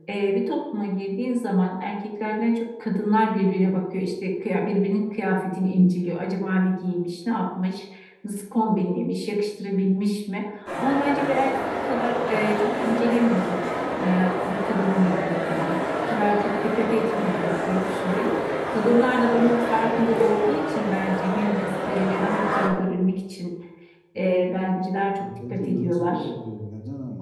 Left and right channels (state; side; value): identical; both; correlation 1.00